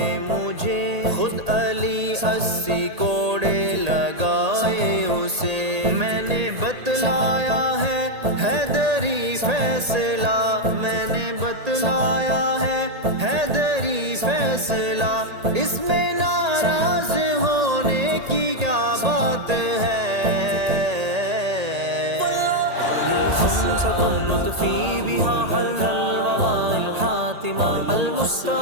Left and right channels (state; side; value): late; left; 1.8 ms